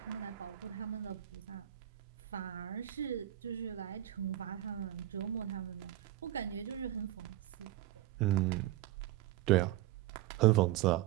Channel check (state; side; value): quieter; left; 13.5 dB